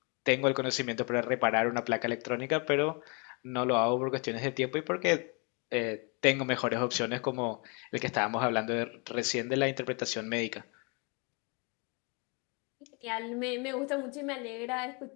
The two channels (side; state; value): right; quieter; 33.9 dB